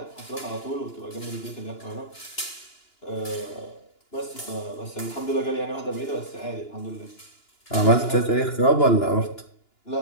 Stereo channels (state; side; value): late; right; 2.9 ms